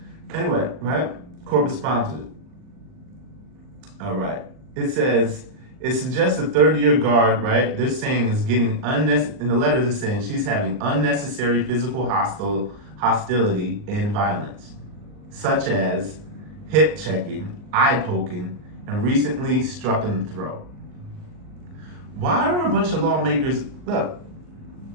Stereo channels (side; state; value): left; late; 39 ms